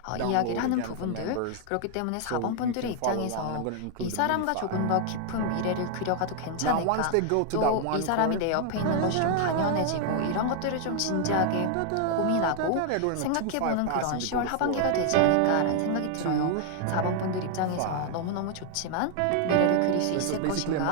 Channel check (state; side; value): different; both; correlation 0.00